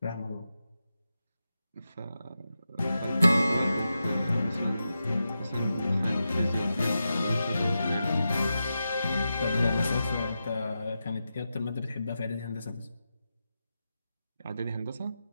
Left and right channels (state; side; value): inverted; both; correlation -0.90